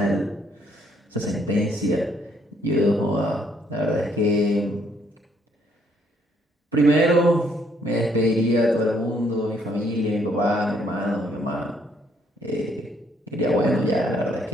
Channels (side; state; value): both; normal; correlation 0.68